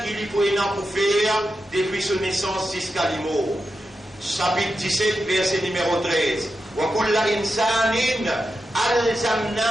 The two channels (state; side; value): normal; both; correlation 0.89